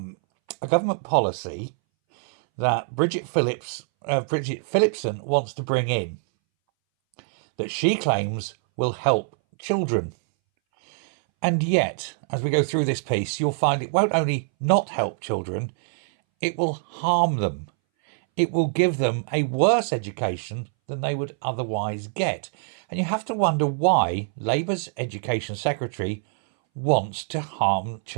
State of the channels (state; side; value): silent; left; 61 dB below the other